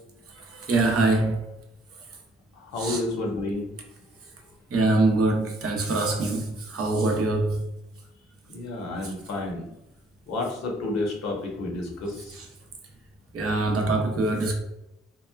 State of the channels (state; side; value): normal; both; correlation 0.64